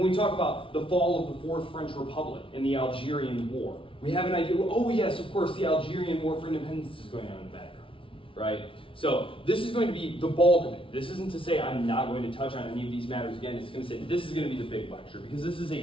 we talk about the fall of the Fourth French Republic and the Algerian War, we have an idea, oh yes, of course, the Algerian War for Independence is going on in the background, right? So this is going to be the bulk of it. This isn't to say I'm not going to touch on any of these matters again. It's going to say this is going to be the big lecture because this is a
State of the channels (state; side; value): late; right; 0.25 ms